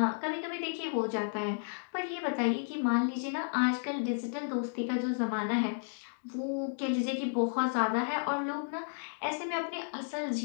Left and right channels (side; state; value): right; silent; digital silence